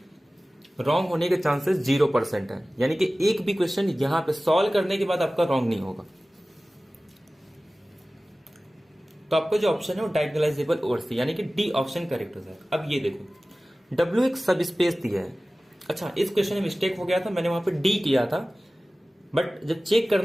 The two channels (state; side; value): normal; both; correlation 0.97